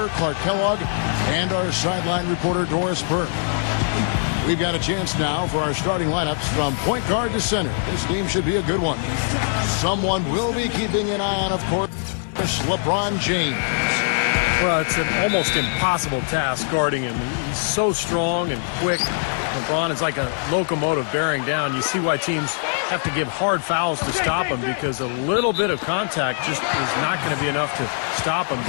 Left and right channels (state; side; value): silent; right; digital silence